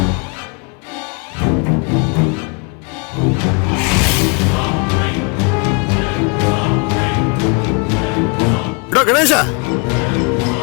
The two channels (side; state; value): right; quieter; 33.7 dB